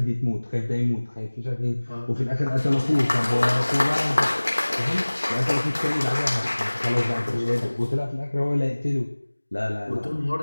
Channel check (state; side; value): inverted; both; correlation -1.00